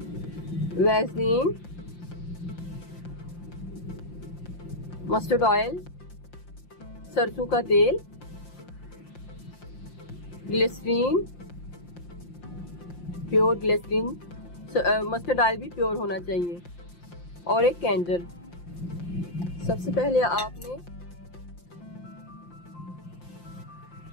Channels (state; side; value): late; right; 5.8 ms